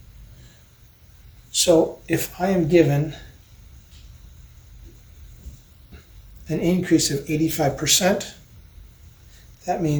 So if I am given an increase of 85%, that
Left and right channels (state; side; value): identical; both; correlation 1.00